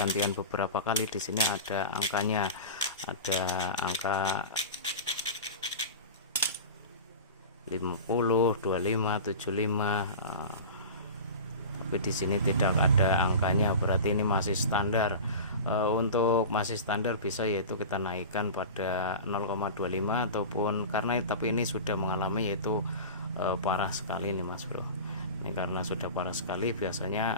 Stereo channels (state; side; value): inverted; both; correlation -0.31